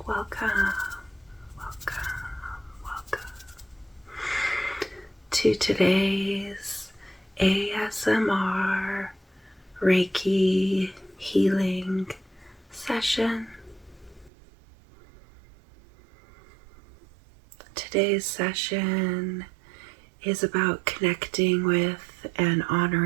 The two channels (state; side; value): drops out; left; at 14.3 s